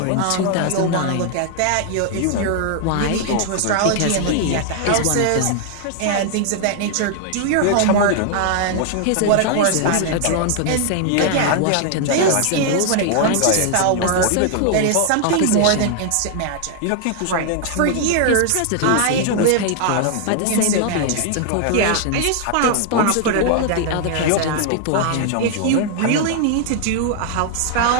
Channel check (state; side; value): different; both; correlation 0.00